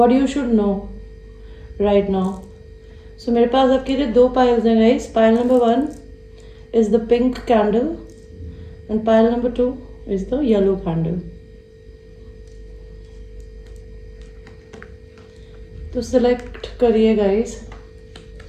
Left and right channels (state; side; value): identical; both; correlation 1.00